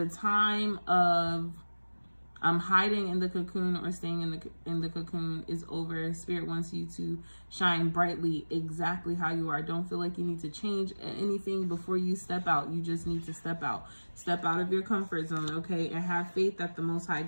time of hiding in the cocoon or staying in the cocoon is over. Spirit wants you to shine brightly exactly how you are. Don't feel like you need to change anything before you step out. You just need to step out of your comfort zone. Okay, and have faith that the Most High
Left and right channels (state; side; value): inverted; both; correlation -1.00